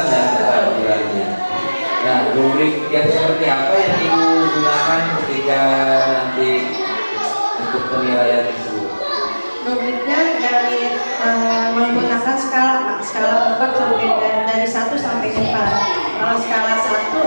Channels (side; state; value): both; inverted; correlation -1.00